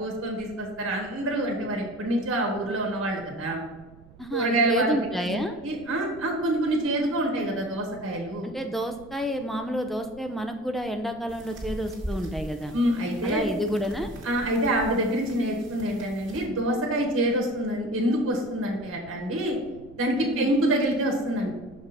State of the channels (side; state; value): right; noise; rumble, 22 dB below the sound